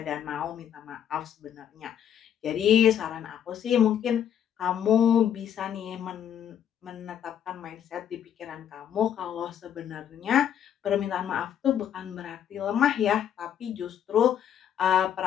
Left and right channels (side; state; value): right; quieter; 9.4 dB